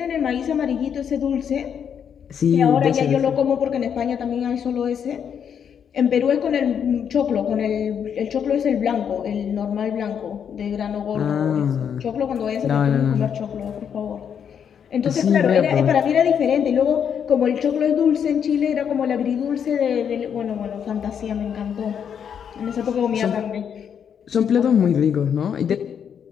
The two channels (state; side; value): quieter; right; 7.9 dB